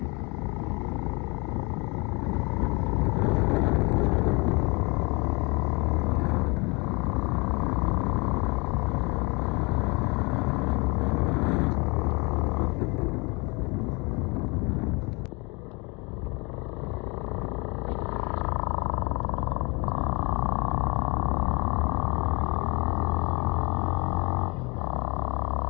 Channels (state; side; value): quieter; right; 28.7 dB